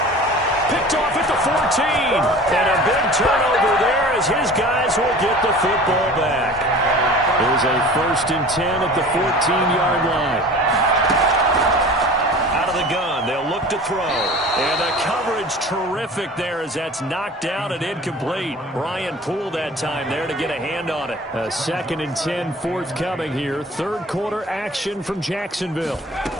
Picked off at the 14. And a big turnover there as his guys will get the football back. There's a 1st and 10 at the 14-yard line. Out of the gun, they'll look to throw. And the coverage terrific there as that's knocked out and incomplete. Brian Poole that time there to get a hand on it. A 2nd and 10 forthcoming here. Third quarter action from Jacksonville.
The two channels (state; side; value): normal; both; correlation 0.41